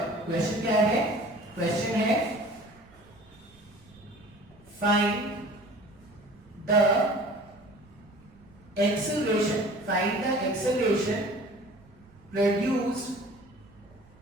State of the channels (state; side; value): noise; right; rumble, 27 dB below the sound